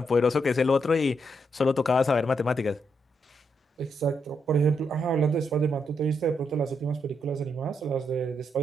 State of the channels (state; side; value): normal; both; correlation 0.79